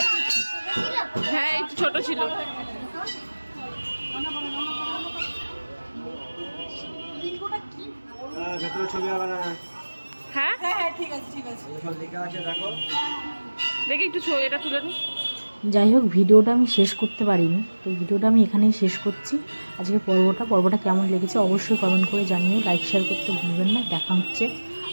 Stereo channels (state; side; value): inverted; both; correlation -1.00